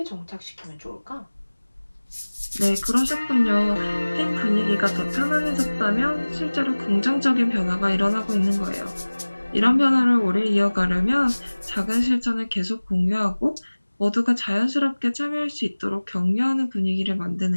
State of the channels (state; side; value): inverted; both; correlation -1.00